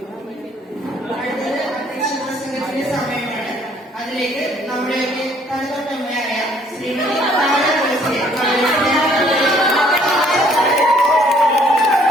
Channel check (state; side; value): normal; both; correlation 0.62